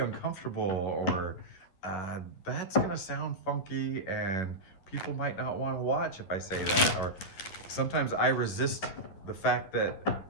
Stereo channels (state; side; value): late; right; 11 ms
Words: or "That's gonna sound funky," and people might not want to watch if I say that. Or sometimes I resist the fact that